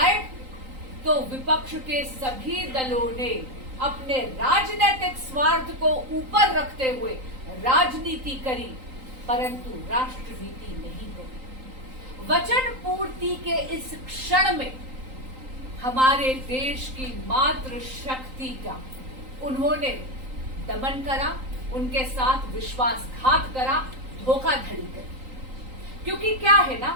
तो विपक्ष के सभी दलों ने अपने राजनीतिक स्वार्थ को ऊपर रखते हुए राजनीति करी, परंतु राष्ट्रनीति नहीं करी। वचन पूर्ति के इस क्षण में हमारे देश की मातृ शक्ति का उन्होंने दमन करा, उनके साथ विश्वासघात करा, धोखाधड़ी करी। क्योंकि क्या है ना,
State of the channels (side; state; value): left; late; 3.8 ms